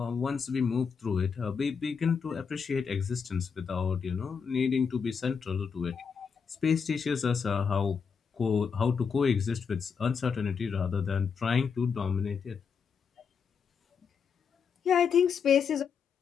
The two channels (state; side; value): quieter; right; 6.2 dB